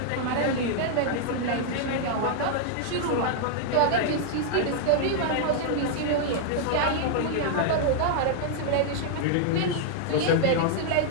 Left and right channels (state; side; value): different; both; correlation -0.01